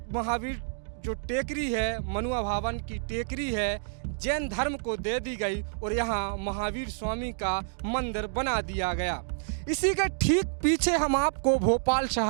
महावीर जो टेकरी है, मनुआ भवन की टेकरी है, जैन धर्म को दे दी गई और यहाँ महावीर स्वामी का मंदिर बना दिया गया। इसी के ठीक पीछे हम आपको भोपाल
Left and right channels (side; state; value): left; silent; digital silence